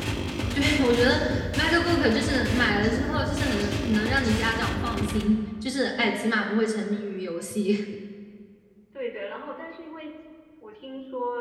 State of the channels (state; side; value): identical; both; correlation 1.00